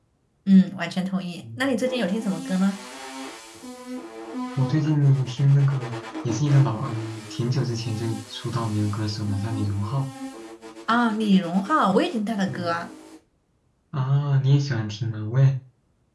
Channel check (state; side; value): identical; both; correlation 1.00